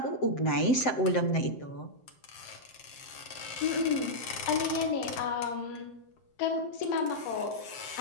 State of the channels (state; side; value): late; right; 7.7 ms